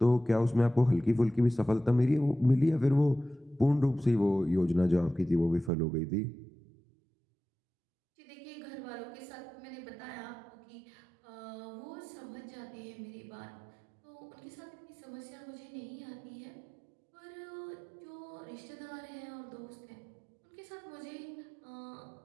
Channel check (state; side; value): drops out; left; at 5.7 s